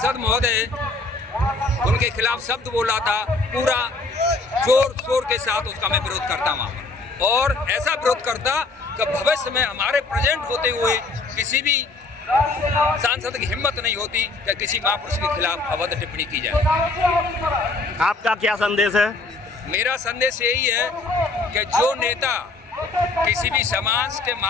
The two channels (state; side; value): quieter; right; 3.5 dB